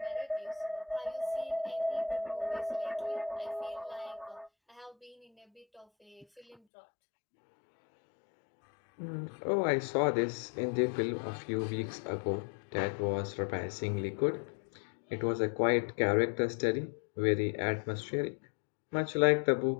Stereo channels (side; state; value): right; drops out; at 6.6 s